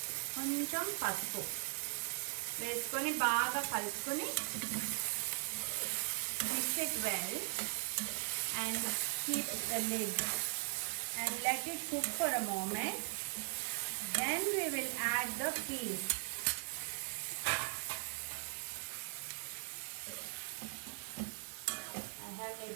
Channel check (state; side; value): silent; left; digital silence